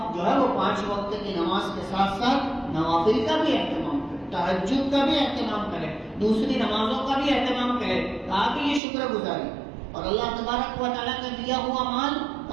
جو ہے وہ 5 وقت کی نماز کے ساتھ ساتھ نوافل کا بھی اہتمام کرے، تہجد کا بھی اہتمام کرے، دوسری نمازوں کا بھی اہتمام کرے. کہا کہ یہ شکر گزاری. اور اللہ تبارک و تعالیٰ کا دیا ہوا مال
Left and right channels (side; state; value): left; drops out; at 8.8 s